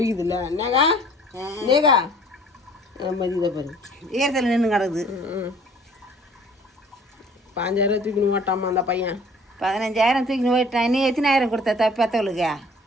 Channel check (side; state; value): both; normal; correlation 0.52